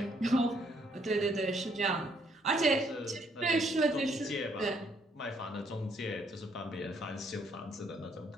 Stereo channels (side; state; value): both; normal; correlation 0.69